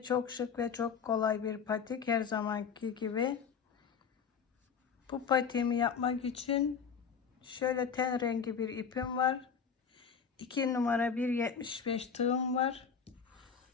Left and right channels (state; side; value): quieter; right; 6.6 dB